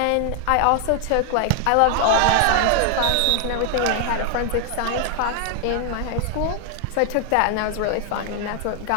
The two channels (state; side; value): different; both; correlation 0.00